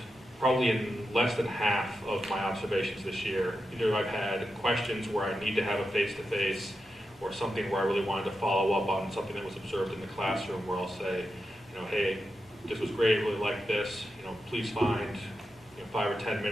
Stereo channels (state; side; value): normal; both; correlation 0.88